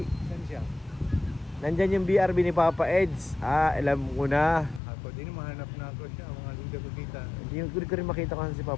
Saan siya? Nandyan yung BRB ni Papa Eds. Alam ko na. Ako din mahanap na ako siya. Mga hindi ko kita. Hindi ko rin makita kasi si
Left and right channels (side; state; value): right; drops out; at 4.8 s